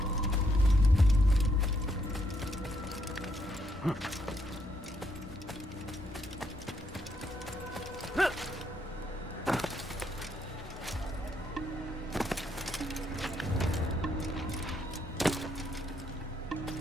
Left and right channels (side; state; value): both; normal; correlation 0.75